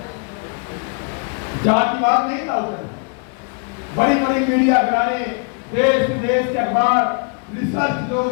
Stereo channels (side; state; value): right; quieter; 36.1 dB